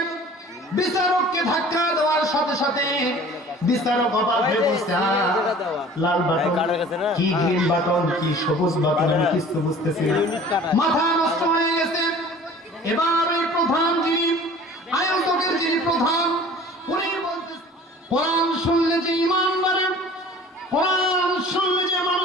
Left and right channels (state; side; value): normal; both; correlation 0.46